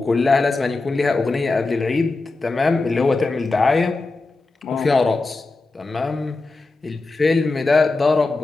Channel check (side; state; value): right; quieter; 3.5 dB